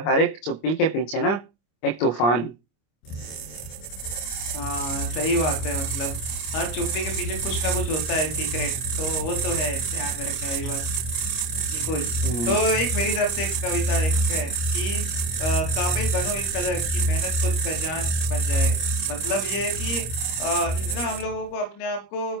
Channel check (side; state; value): right; late; 25 ms